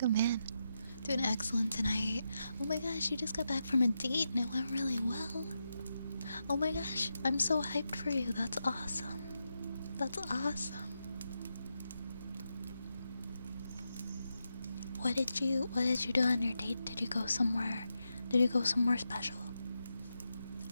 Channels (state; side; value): inverted; both; correlation -0.86